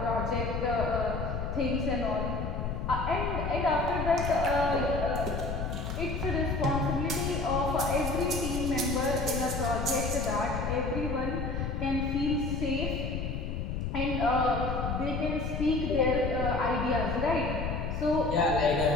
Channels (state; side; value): noise; left; rumble, 3 dB below the sound